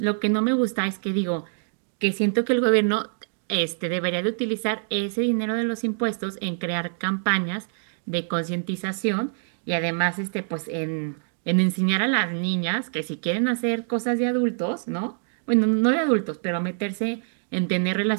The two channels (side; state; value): left; silent; 62 dB below the other